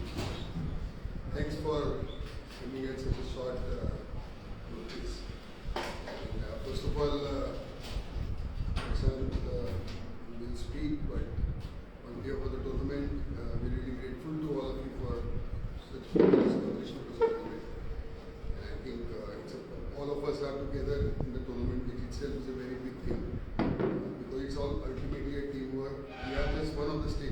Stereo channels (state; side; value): identical; both; correlation 1.00